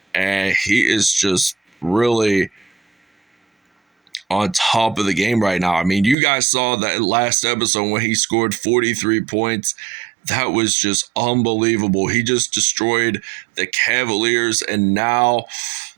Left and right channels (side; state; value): left; drops out; at 6.2 s